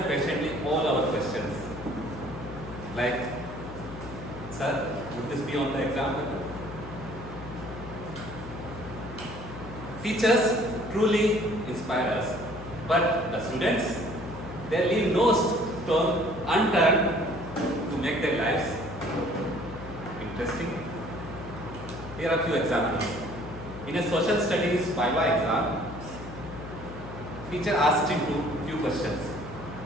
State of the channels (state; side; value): noise; left; hum, 13 dB below the sound